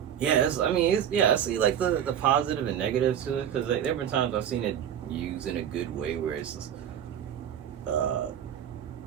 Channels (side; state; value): left; quieter; 9.4 dB